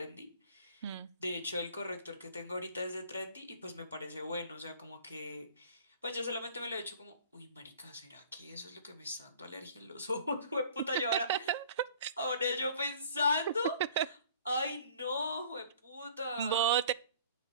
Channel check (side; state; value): both; inverted; correlation -0.49